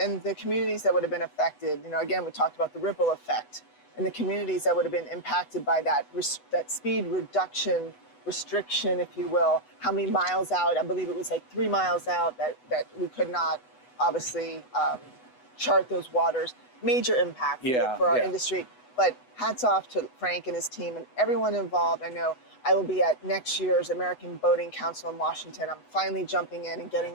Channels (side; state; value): right; late; 8.1 ms